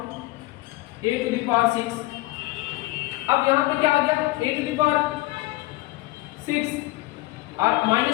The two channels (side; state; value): right; quieter; 19.8 dB